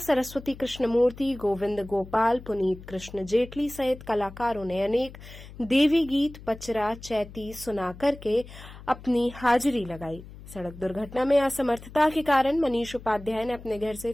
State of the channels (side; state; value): left; noise; hum, 16 dB below the sound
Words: कृष्णमूर्ति, गोविंद गोपाल, पुनीत कृष्ण जेटली सहित कलाकारों ने अनेक देवी गीत, पचरा, चैती सुना करके अपनी हाजिरी लगाई। सड़क दुर्घटना में असमर्थता के कारण मनीष उपाध्याय ने अपने घर से